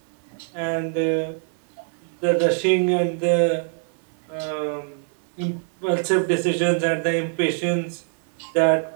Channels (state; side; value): silent; left; 57 dB below the other